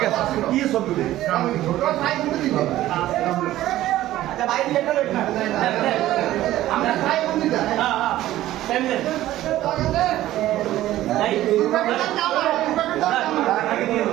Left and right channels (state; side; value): quieter; left; 14.5 dB